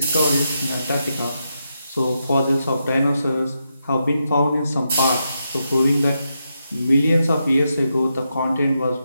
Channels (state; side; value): inverted; both; correlation -0.84